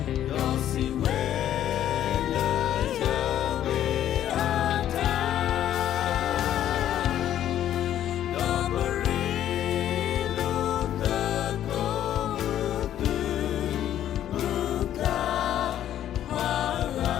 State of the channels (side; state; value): right; quieter; 11.4 dB